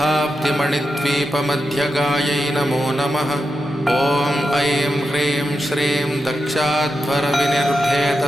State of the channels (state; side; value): normal; both; correlation 0.88